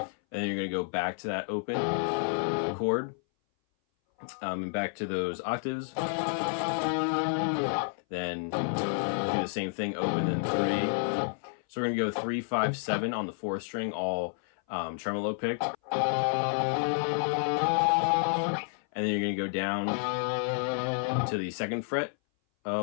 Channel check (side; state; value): right; silent; 58 dB below the other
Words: And then you're going to go back to that open chord. And back to those octaves. Then do the same thing, open, then 3. So we're going to go 3, 5, 7 on the 4th string, all tremolo picked. And then you're going to go down to the 2nd fret